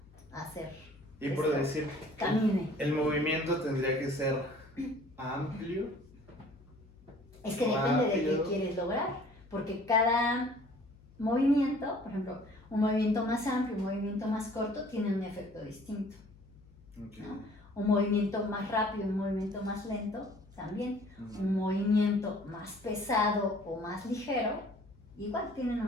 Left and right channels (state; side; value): noise; left; hum, 24 dB below the sound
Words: a hacer. Y por decir, camine. El movimiento tendría que ser amplio. Es que depende de qué quieres lograr, porque cada movimiento, por ejemplo, un movimiento más amplio, un movimiento más corto, tiene un efecto distinto. ¿No? Un movimiento más rápido, un movimiento más lento, también. Un movimiento más pesado o más ligero, igual tienen